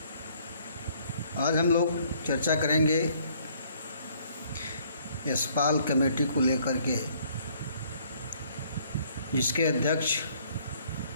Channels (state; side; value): inverted; both; correlation -0.62